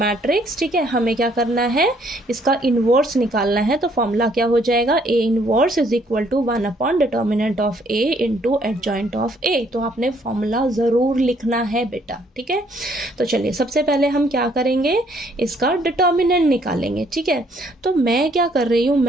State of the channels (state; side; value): normal; both; correlation 0.66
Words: ठीक है, हमें क्या करना है, इसका इनवर्स निकालना है। तो फॉर्मूला क्या हो जाएगा, A inverse is equal to 1 upon determinant of A into adjoint of A. तो आपने फॉर्मूला जरूर लिखना है बेटा। ठीक है, तो चलिए सबसे पहले हम क्या करेंगे, इसका डिटर्मिनेंट निकालेंगे। ठीक है, तो मैं क्या कर रही हूँ,